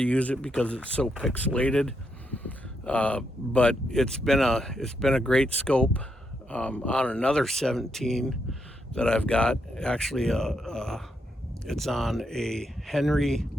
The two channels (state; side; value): normal; both; correlation 0.80